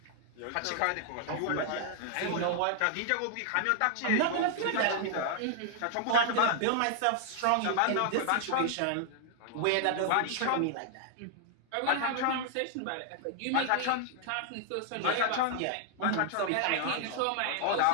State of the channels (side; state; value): both; different; correlation -0.01